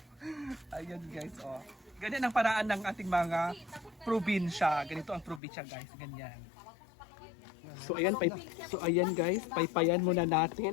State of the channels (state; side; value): drops out; right; at 5.4 s